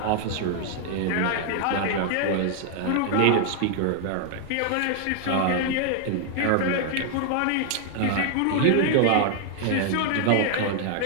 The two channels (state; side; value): different; both; correlation 0.00